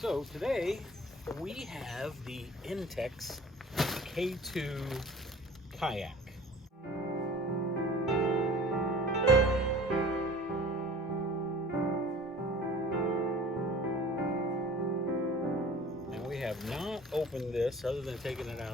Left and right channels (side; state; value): both; normal; correlation 0.44